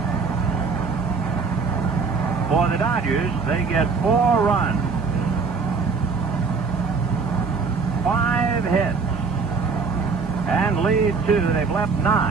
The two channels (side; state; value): left; quieter; 4.8 dB